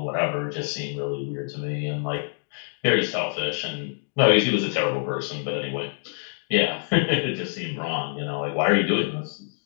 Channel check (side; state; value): right; silent; 61 dB below the other